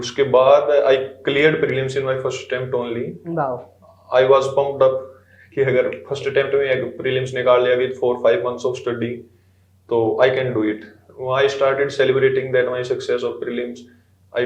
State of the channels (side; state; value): both; identical; correlation 1.00